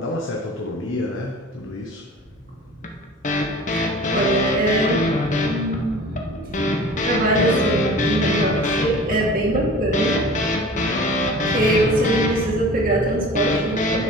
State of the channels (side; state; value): both; normal; correlation 0.41